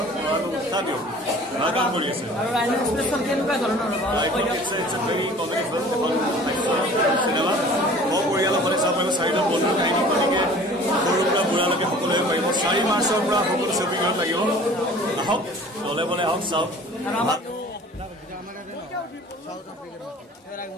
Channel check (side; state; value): both; normal; correlation 0.47